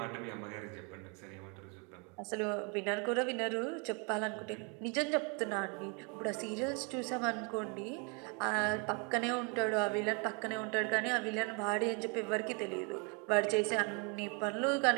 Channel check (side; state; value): left; quieter; 33.9 dB